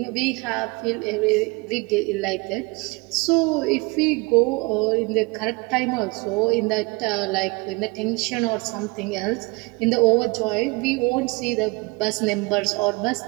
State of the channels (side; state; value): left; quieter; 26.4 dB